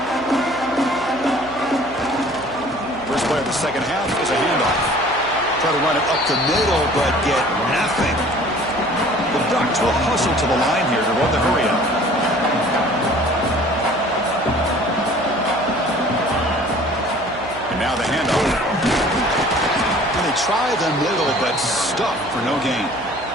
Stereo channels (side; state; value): right; noise; hum, 17 dB below the sound